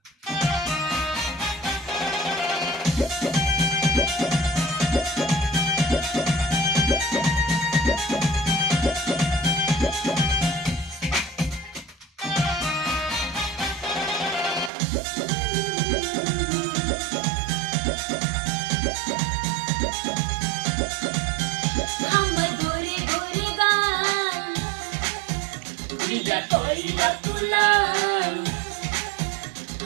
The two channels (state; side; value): drops out; left; at 14.7 s